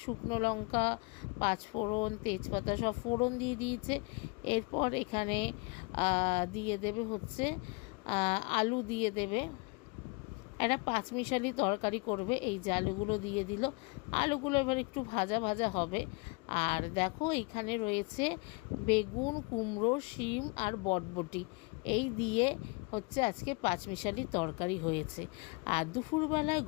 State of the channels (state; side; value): quieter; right; 28.8 dB